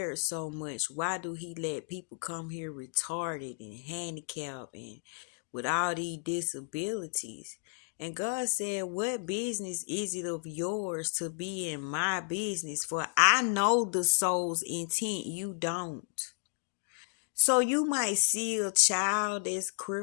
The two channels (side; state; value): right; silent; 56 dB below the other